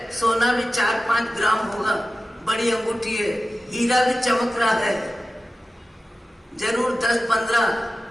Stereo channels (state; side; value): normal; both; correlation 0.94